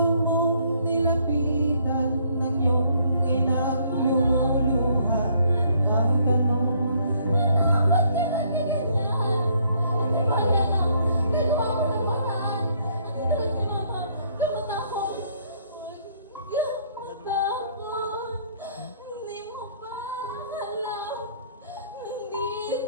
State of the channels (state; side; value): inverted; both; correlation -0.65